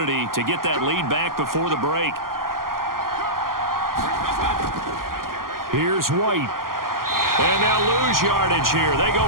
to get that lead back before the break. Here's White. And they'll lose yardage here. They go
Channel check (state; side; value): late; left; 0.92 ms